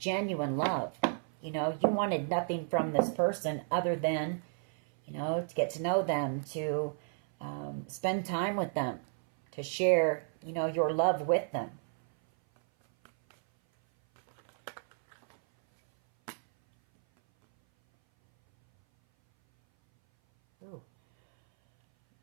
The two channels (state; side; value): silent; left; 56 dB below the other